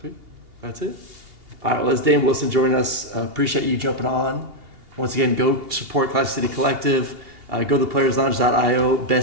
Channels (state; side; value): late; left; 2.8 ms